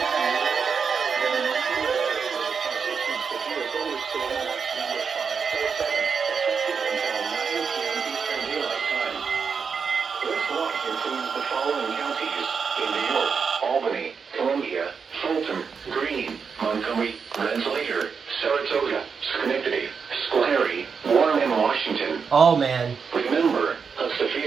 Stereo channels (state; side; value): quieter; left; 5.9 dB